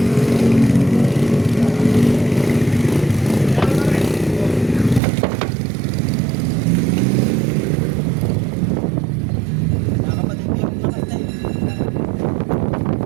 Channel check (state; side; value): drops out; left; at 5.0 s